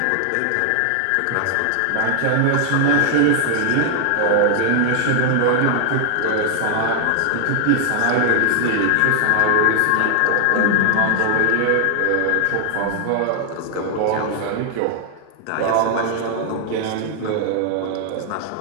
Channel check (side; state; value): both; different; correlation 0.00